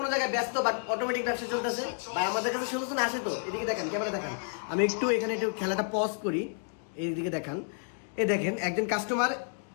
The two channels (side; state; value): right; silent; 57 dB below the other